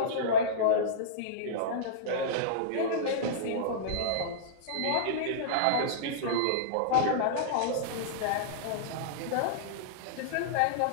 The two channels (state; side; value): different; both; correlation -0.03